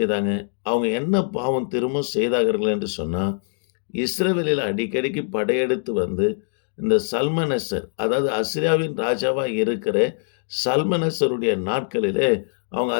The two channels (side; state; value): right; silent; digital silence